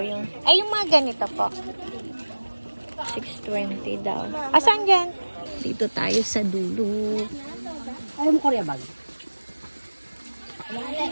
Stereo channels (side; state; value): both; inverted; correlation -1.00